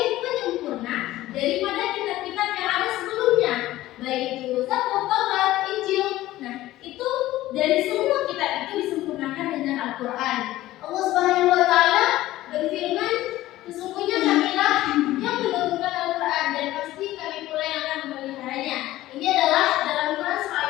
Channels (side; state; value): right; quieter; 15.8 dB